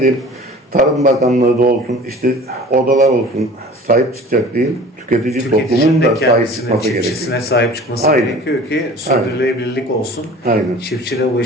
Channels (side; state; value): both; normal; correlation 0.43